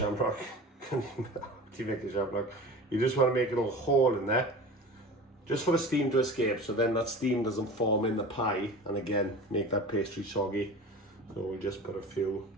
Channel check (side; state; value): both; normal; correlation 0.36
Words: Do you make a shamrock? You just want to make a little hole in there, just for the steam to escape, so then that steam doesn't form in the pie and again make that pastry soggy. So we'll just put a few.